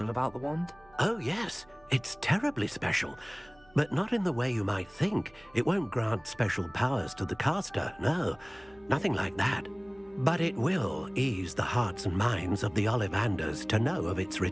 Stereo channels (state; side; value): noise; right; hum, 28 dB below the sound